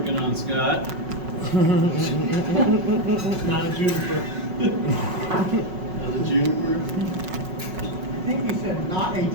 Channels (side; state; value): left; late; 5.4 ms